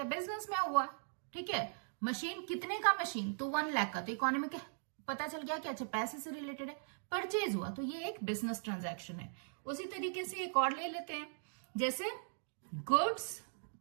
बिजनेस में हुआ। ठीक है, मशीन कितने का? मशीन तो 1 लाख का, तो इकोनॉमिक पता चल गया कि अच्छा पैसे से रिलेटेड है, परचेज हुआ, तो ये एक बिजनेस ट्रांजैक्शन है। उसी तरीके से एक और ले लेते हैं, जैसे goods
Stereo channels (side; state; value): left; silent; digital silence